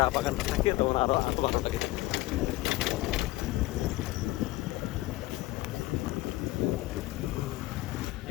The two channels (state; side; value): quieter; right; 18.7 dB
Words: বাগানটা থাকে তখন আরো ভালো লাগে।